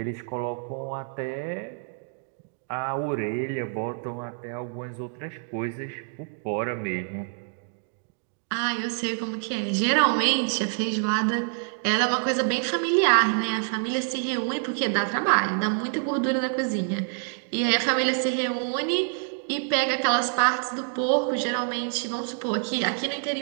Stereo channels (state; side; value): silent; left; 60 dB below the other